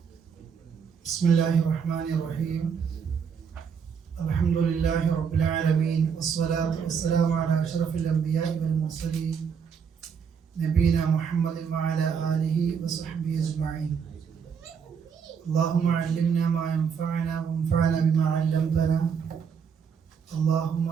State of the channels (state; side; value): quieter; left; 6.7 dB